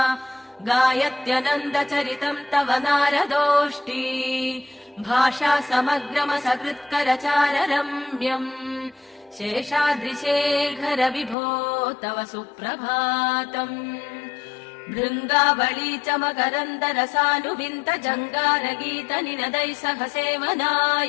गायत्यनन्दचरितम् तव नारदोष्टी भाषा समग्रमसकृत्करचार रम्यम् शेषाद्रिशेखर विभो तव सुप्रभातम् भृङ्गावळी च मकरन्दरसानुविन्त जङ्गारगीत निनदैः सह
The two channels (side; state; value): right; drops out; at 11.4 s